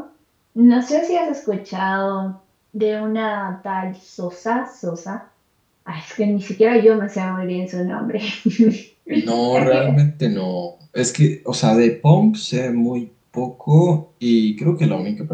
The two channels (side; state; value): both; identical; correlation 1.00